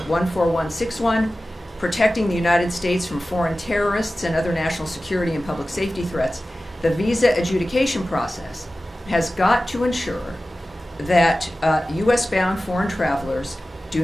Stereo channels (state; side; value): normal; both; correlation 0.95